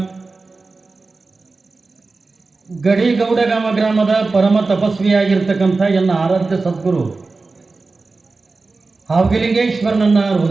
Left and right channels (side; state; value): left; quieter; 3.8 dB